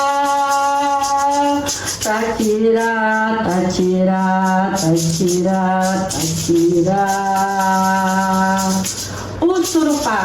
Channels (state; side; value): identical; both; correlation 1.00